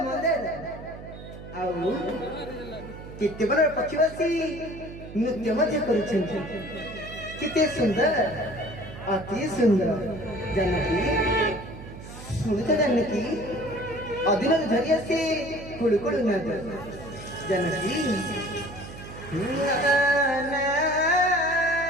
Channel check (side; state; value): right; noise; hum, 14 dB below the sound